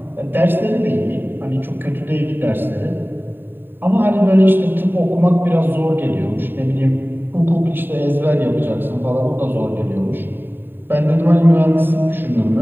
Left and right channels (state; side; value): late; left; 0.095 ms